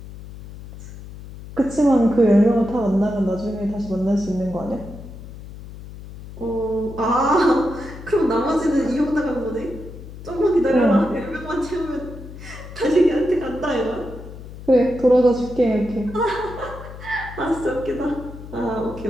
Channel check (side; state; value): left; noise; hum, 14 dB below the sound